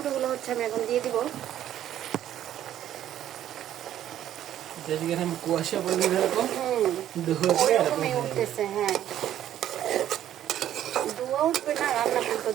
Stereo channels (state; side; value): quieter; left; 11.5 dB